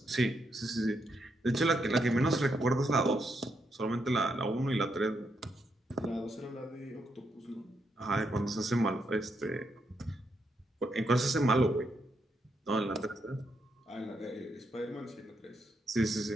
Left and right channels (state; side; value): normal; both; correlation 0.80